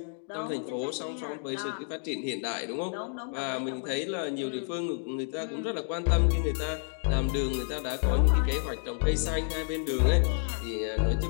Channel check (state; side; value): silent; right; 58 dB below the other